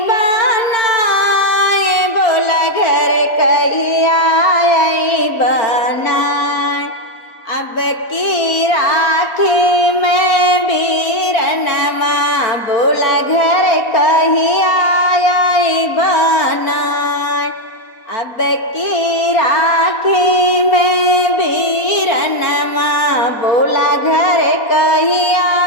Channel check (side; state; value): right; late; 4.2 ms